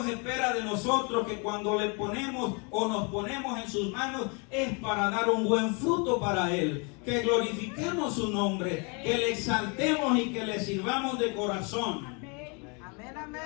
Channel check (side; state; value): right; quieter; 33.5 dB